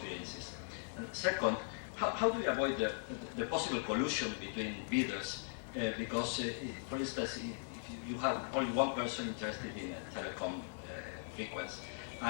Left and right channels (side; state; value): right; silent; digital silence